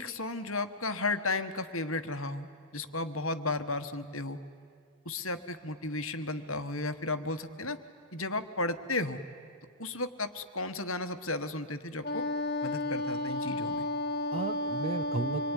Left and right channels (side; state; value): both; normal; correlation -0.12